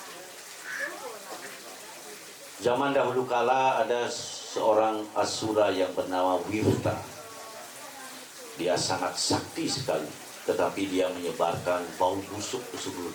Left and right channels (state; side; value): identical; both; correlation 1.00